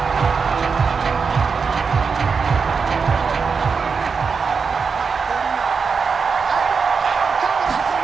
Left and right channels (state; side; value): quieter; left; 5.4 dB